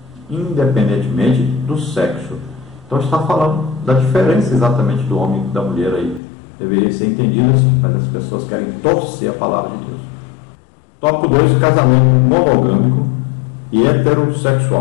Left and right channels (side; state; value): right; drops out; at 6.2 s